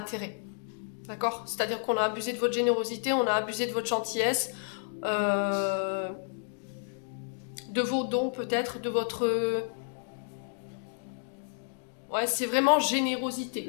D'accord? C'est-à-dire qu'on a abusé de votre générosité, on a abusé de votre gentillesse, de vos dons peut-être, de votre... Ouais, c'est vraiment générosité,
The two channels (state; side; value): silent; right; digital silence